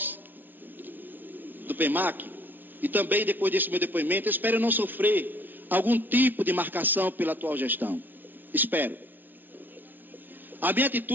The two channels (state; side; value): late; left; 0.087 ms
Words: do PEMAC e também depois desse meu depoimento, espero não sofrer algum tipo de marcação pela atual gestão. Espero. A minha